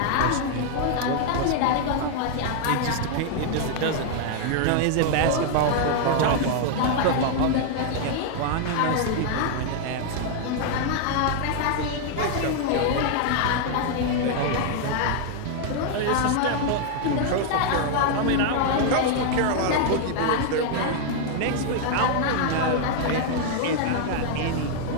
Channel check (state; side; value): different; both; correlation 0.00